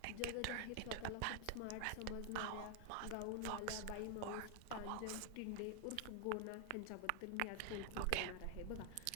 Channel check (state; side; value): different; both; correlation 0.00